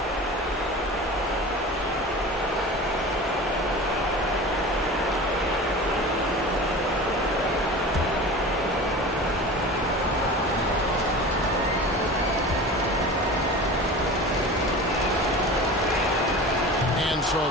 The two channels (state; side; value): normal; both; correlation 0.34